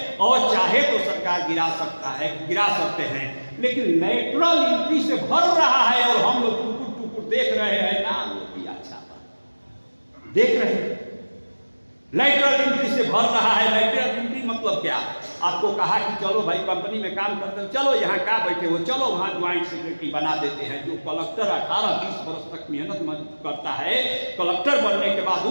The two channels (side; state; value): both; inverted; correlation -1.00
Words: और चाहे तो सरकार गिरा सकते हैं, लेकिन लेटरल एंट्री से भर रहा है और हम लोग टुकुर देख रहे हैं, नाम किया छापा देख रहे हैं, लेटरल एंट्री से भर रहा है। लेटरल एंट्री मतलब क्या, आपको कहा कि चलो भाई कंपनी में काम करते हो, चलो यहाँ क्या बैठे हो, चलो वहाँ ज्वाइंट सेक्रेटरी बना देते हैं। जो कलेक्टर 18-20 वर्ष तक मेहनत करता है, कलेक्टर बनने के बाद